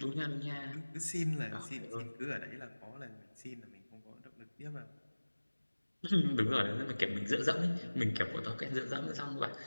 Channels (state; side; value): inverted; both; correlation -1.00